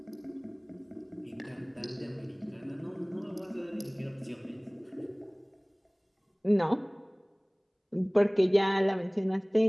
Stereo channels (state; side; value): identical; both; correlation 1.00